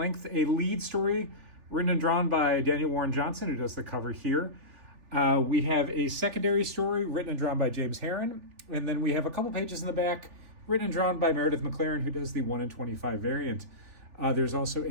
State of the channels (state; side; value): late; left; 3.3 ms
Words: A lead story written and drawn by Daniel Warren Johnson, who does the cover here. We have a secondary story written and drawn by James Herron. And then we have a couple pages in the back written and drawn by Meredith McLaren, who does the 1 in 25 variant. There's also